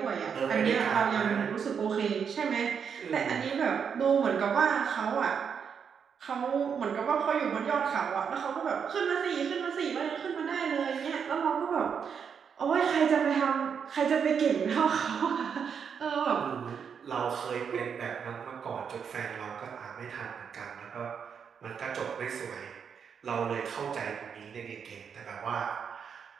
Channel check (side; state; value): left; quieter; 6.9 dB